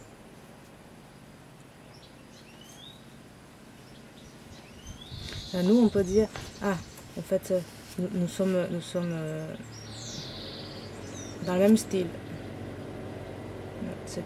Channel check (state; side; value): identical; both; correlation 1.00